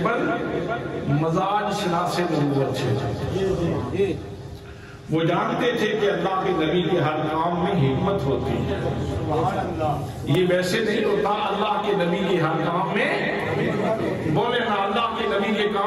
مزاج شناس نبوت ہے، وہ جانتے تھے کہ اللہ کے نبی کے ہر کام میں حکمت ہوتی ہے. یہ ویسے نہیں ہوتا، اللہ کے نبی کے ہر کام میں، بولے نا، اللہ کے نبی کے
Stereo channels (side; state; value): both; identical; correlation 1.00